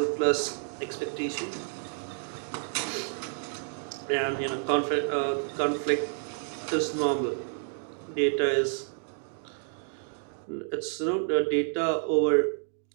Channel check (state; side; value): silent; left; 58 dB below the other